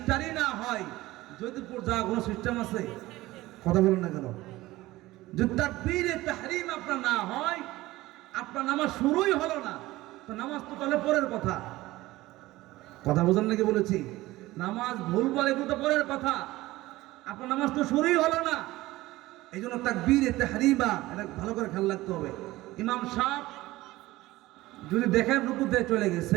না হয় জয়দেবপুর যাওয়ার কোনো সিস্টেম আছে? কথা বলুন না কেন? যদি তাকবীরে তাহরিম আপনার না হয়, আপনার নামাজ শুরুই হলো না, তো নামাজ তো তাহলে পরের কথা। কথা বোঝেন নাকি বলেছি? নামাজ ভুল বলে কিন্তু পরের কথা, আপনার নামাজ তো শুরুই হলো না। এই জন্য তাকবীরে তাহরিমা এটা ভালো করে খেয়াল রাখতে হবে। ইমাম সাহেব যদি দেখেন রুকুতে চলে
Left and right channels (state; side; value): quieter; left; 18.1 dB